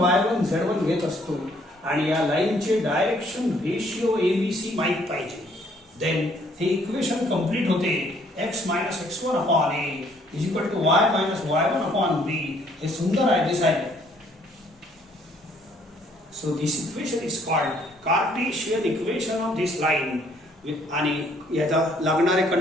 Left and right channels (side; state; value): both; normal; correlation 0.64